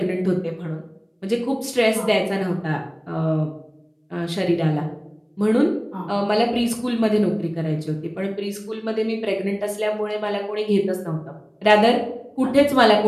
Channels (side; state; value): both; identical; correlation 1.00